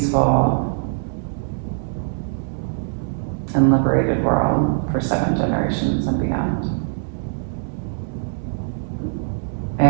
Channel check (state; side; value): silent; left; digital silence